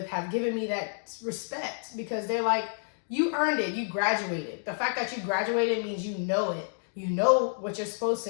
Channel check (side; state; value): right; silent; digital silence